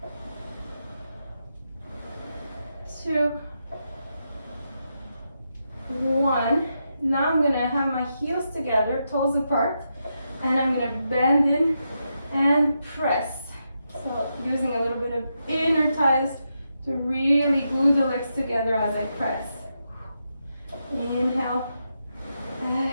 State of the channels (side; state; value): both; inverted; correlation -0.85